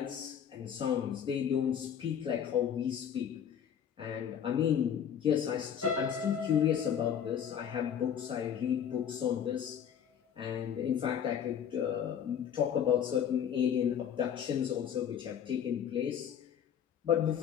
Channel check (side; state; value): right; quieter; 8.6 dB